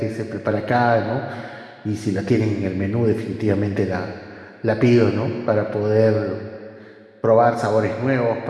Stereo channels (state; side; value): identical; both; correlation 1.00